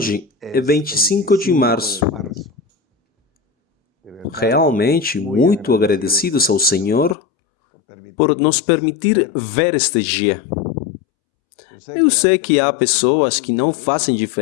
é es 25 de 25 março. de marzo. De verdad, Realmente muito agradecidos ao Senhor por nos permitir ver este dia. Eu sei que há pessoas que não fazem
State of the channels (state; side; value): drops out; right; at 7.2 s